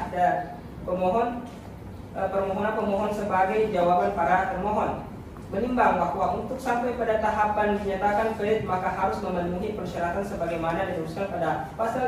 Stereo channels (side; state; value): both; identical; correlation 1.00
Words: dan pemohon permohonan pemohon sebagai jawaban para termohon. Menimbang bahwa untuk sampai pada tahapan dinyatakan valid maka harus memenuhi persyaratan sebagaimana dituliskan pada